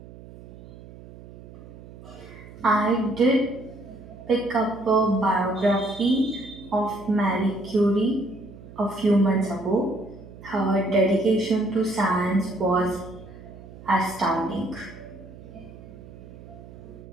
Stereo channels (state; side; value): noise; right; hum, 17 dB below the sound